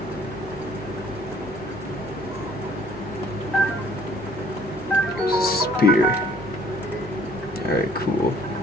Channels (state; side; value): normal; both; correlation 0.58